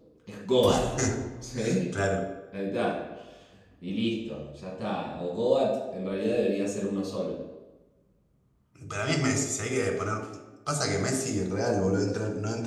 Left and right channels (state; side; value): identical; both; correlation 1.00